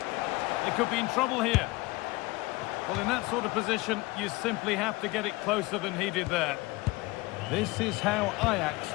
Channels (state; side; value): quieter; right; 22.3 dB